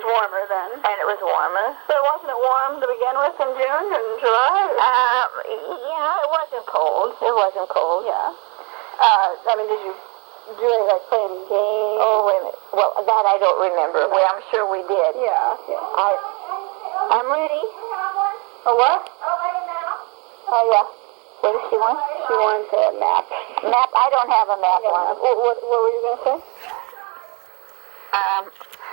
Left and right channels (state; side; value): quieter; left; 31.6 dB